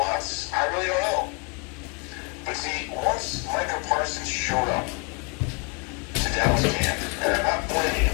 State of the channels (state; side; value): quieter; right; 32.9 dB